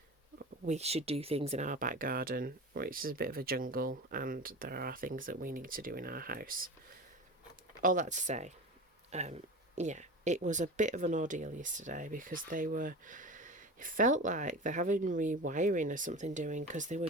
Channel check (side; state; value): both; normal; correlation 0.31